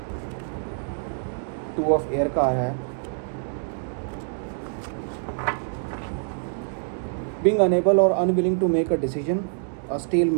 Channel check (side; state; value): left; silent; digital silence